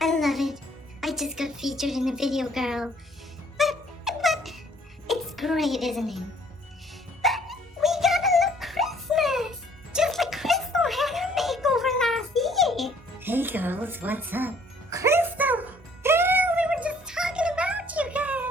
love it. I just got featured in a video, girl. But it's great, isn't it? But we gotta look Christmas, just like Crystal had her makeover last year. Hey girls, what's up? Crystal, girl, we were just talking about you,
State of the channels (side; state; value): both; normal; correlation 0.60